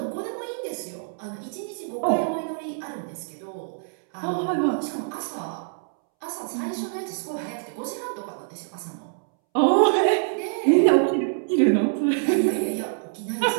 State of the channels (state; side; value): silent; left; 61 dB below the other